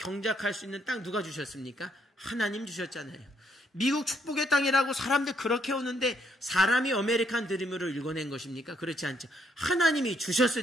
수 있는 땅 누가 주셨습니까? 하나님 주셨잖아요. 미국 축복의 땅이라고 사람들 그렇게 오는데 사람이 아메리칸 드림으로 읽어낸 것입니까? 그렇지 않죠. 하나님이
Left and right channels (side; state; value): both; normal; correlation 0.72